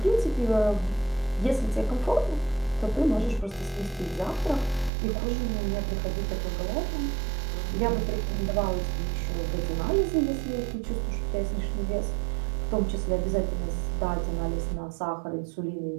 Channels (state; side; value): drops out; left; at 4.9 s